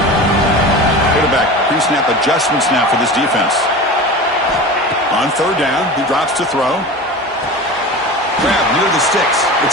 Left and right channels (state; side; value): normal; both; correlation 0.32